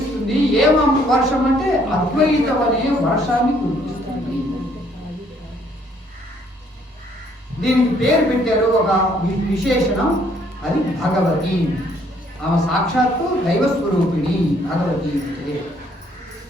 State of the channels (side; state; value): both; normal; correlation 0.65